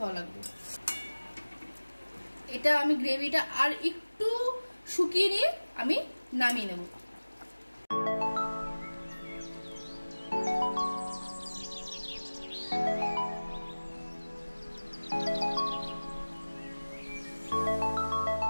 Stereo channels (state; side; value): inverted; both; correlation -1.00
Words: ভালো লাগবে। এটা আমি গ্রেভিটা আর একটু শুকিয়ে নিয়ে আমি নামিয়ে নেব।